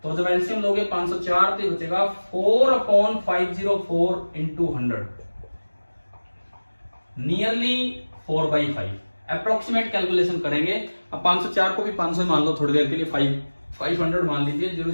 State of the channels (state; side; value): inverted; both; correlation -1.00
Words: तो जब एलसीएम लोगे 504 तो बचेगा 4 upon 504 into 100, nearly 4/5। Approximate calculation करेंगे। अब 504 को भी 500 मान लो थोड़ी देर के लिए, 500 मान लीजिए,